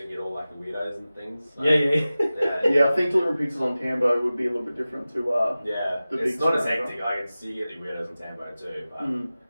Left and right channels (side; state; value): both; inverted; correlation -0.96